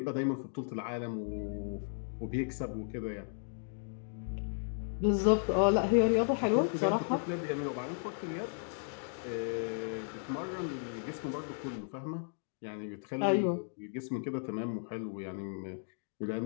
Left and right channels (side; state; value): right; silent; digital silence